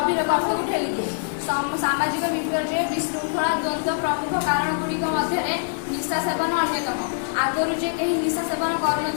गर्त को ठेली दिए। सामाजिक विपर्य विशृंखला द्वंद्व प्रमुख कारण गुड़िक मध्य निशा सेवन अन्यतम। आगुरी जे कहीं निशा सेवन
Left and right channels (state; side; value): silent; right; 56 dB below the other